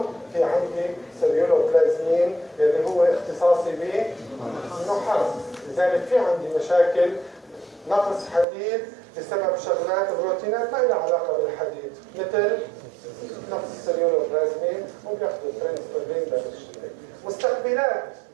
في عندي سيلولوبلازمين اللي هو اختصاصي بالنحاس. لذلك في عندي مشاكل نقص حديد بسبب شغلات بروتينات ما لها علاقه بالحديد مثل نقص السيلولوبلازمين وبياخذوا الترانسفيرين بالشيء. مستقبلات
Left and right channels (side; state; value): left; drops out; at 8.5 s